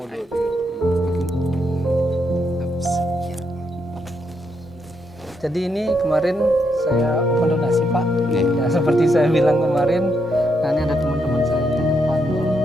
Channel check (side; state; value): both; normal; correlation 0.79